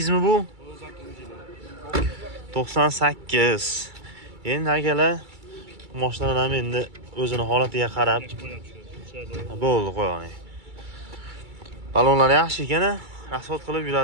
mi bu? 98. Endi akalar mashinalar ham endi o'zini holatiga qarab bo'ldi, qo'ying. Balonlar yaxshi ekan, asfalt qilib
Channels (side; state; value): left; late; 2.3 ms